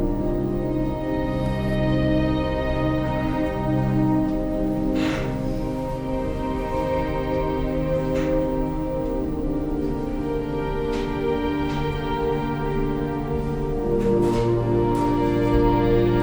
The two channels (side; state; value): both; identical; correlation 1.00